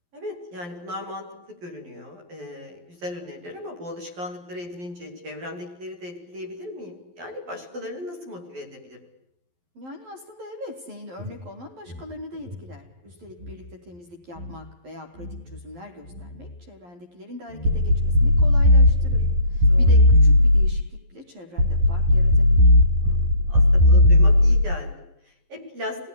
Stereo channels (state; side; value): late; left; 11 ms